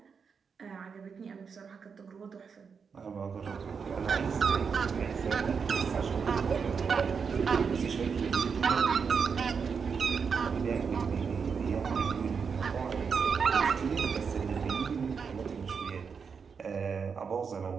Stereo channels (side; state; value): left; quieter; 6.0 dB